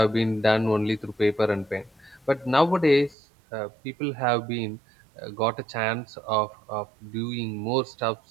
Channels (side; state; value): left; drops out; at 3.2 s